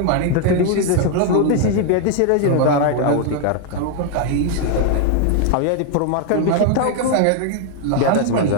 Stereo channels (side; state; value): both; different; correlation 0.01